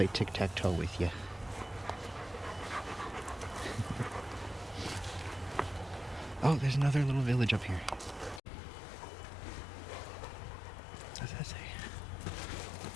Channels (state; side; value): drops out; right; at 8.4 s